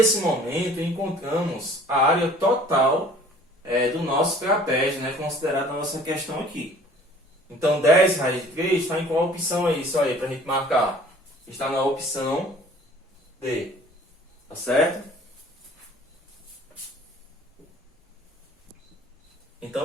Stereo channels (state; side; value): normal; both; correlation 0.51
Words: momento, encontramos a área total do nosso trapézio, né? Considerada na nossa questão aqui. Então, 10 raiz de 3 está em qual opção aí? Isso aí, para a gente marcar. Está na opção D. Tá certo?